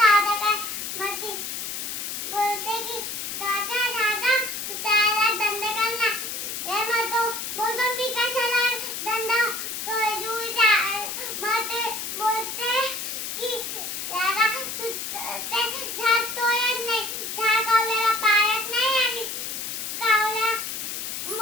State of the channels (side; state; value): left; noise; hiss, 5 dB below the sound